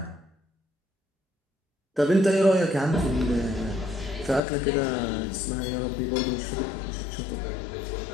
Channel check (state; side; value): drops out; right; at 4.4 s